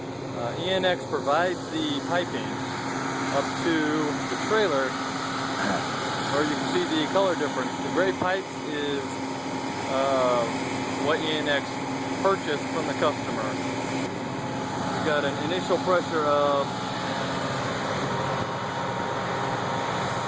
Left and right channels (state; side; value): identical; both; correlation 1.00